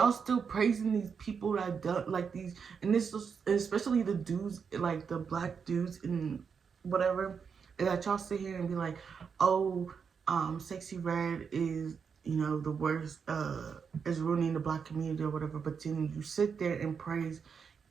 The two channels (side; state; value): left; quieter; 6.2 dB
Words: still praising these people that do, like these, and this is especially the dudes, like the black dudes and whatever, and that y'all sit here and be like, oh, Sexy Red is, you know, the worst, is ruining the black community or whatever, but then you sit there and praise